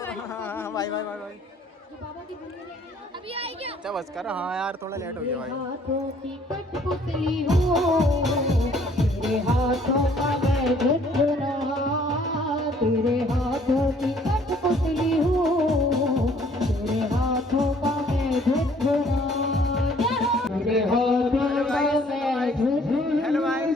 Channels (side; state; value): both; normal; correlation 0.60